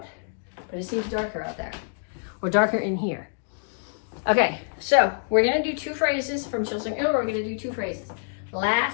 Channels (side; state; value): right; silent; digital silence